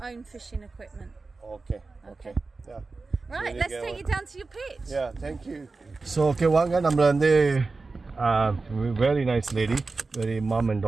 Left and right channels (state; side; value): quieter; left; 3.8 dB